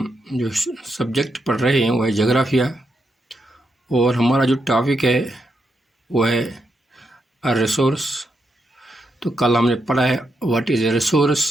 جو سبجیکٹ پڑھ رہے ہیں وہ ہے جغرافیہ، اور ہمارا جو ٹاپک ہے وہ ہے ریسورس۔ تو کل ہم نے پڑھا ہے واٹ از اے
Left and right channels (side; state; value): both; normal; correlation 0.82